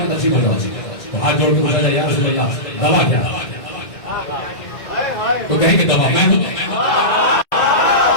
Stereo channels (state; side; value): late; right; 2.0 ms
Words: तकसीम हो जाओ, तो हाथ जोड़ के पूछा जाए या रसूल अल्लाह दवा क्या? तो कहेंगे दवा मैं हूं।